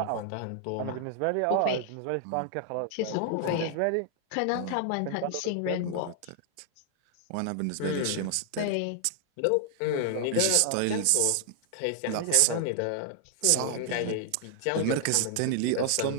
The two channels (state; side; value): different; both; correlation 0.00